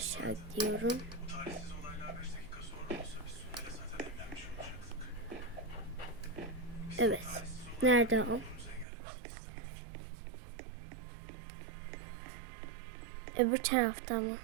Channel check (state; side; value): drops out; left; at 8.8 s